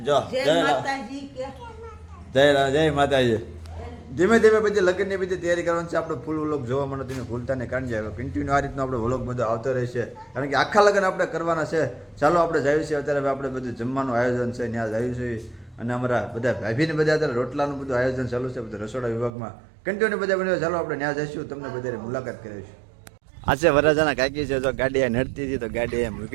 જો જય માતાજી. ધીમે ધીમે બધી લગ્નની બધી તૈયારી કરવાની છે. આપણે ફૂલ વ્લોગ જોવા મળે તમે ભૂલતા ને કાઢી જાય. કન્ટિન્યુ આ રીતનો આપણે વ્લોગ બધો આવતો રહેશે, કારણ કે આખા લગ્ન આપણે કરવાના છે. ચાલો આપણે જઈએ છીએ અત્યારે. આપણે બધું જમવાનું આયોજન છે ત્યાં જઈએ છીએ. અને અમારા બધા ભાભીને બધા અત્યારે રોટલાનું બધું આયોજન ચાલુ છે બધા રસોડા વિભાગમાં. કન્ટિન્યુ બધા બન્યો. ચાલો આપણે ત્યાં જઈશું, તમને બધાને મુલાકાત કરીશું. આ છે વરાજાના કાકી છે. જો ગાડી નડતી હતી તો ગાડી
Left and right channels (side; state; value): left; drops out; at 19.3 s